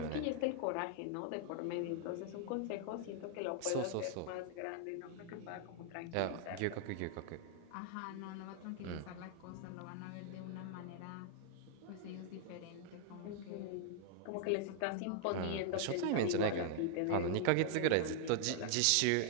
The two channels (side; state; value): both; different; correlation 0.00